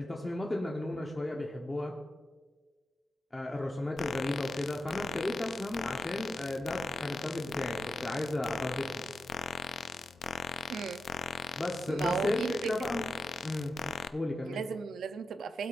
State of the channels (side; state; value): both; normal; correlation 0.88